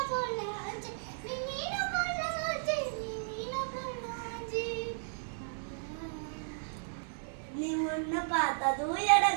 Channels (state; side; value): silent; left; 55 dB below the other